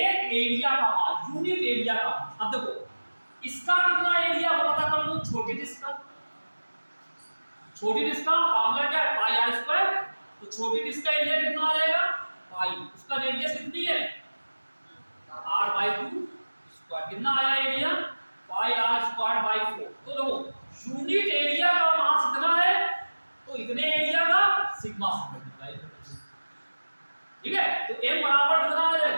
एरिया का मास, यूनिट एरिया का मास। अब देखो इसका कितना एरिया हो पता कर लो, छोटी डिस्क का, छोटी डिस्क का फॉर्मूला क्या है? पाई आर स्क्वायर। तो छोटी डिस्क का एरिया कितना आ जाएगा? पाई, उसका रेडियस कितनी है? r by 2 स्क्वायर, कितना आया area? Pi R square by 4। तो देखो यूनिट एरिया का मास इतना है, तो इतने एरिया का सिग्मा से मल्टीप्लाई करें, ठीक है। तो m बराबर कितना आ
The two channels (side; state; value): both; inverted; correlation -1.00